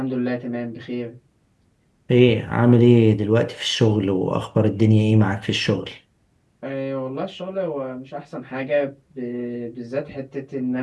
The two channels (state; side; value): identical; both; correlation 1.00